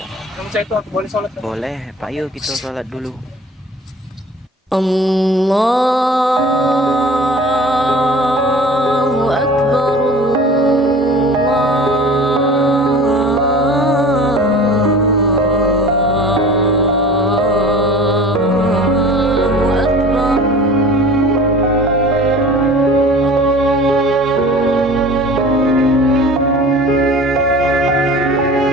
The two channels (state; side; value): normal; both; correlation 0.42